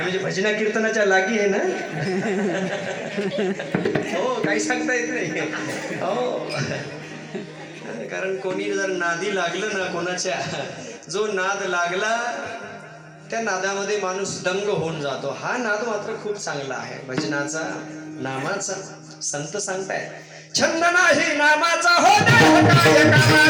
भजना कीर्तनाच्या लागी आहे ना? हो, काही सांगता येत नाही. हो, कारण कोणी जर नादी लागलं ना कोणाच्या, जो नाद लागला त्या नादामध्ये माणूस दंग होऊन जातो. हा नाद मात्र खूप चांगला आहे भजनाचा, नामाचा. संत सांगतायत छंद नाही नामाचा हो देह काय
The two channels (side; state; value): both; identical; correlation 1.00